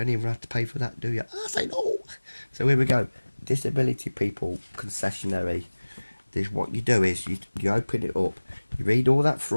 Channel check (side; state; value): both; inverted; correlation -1.00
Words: even have to pay for that, do you? I say no. So here we go. Disability people concessionary. This, what you do is you open it up. You read all that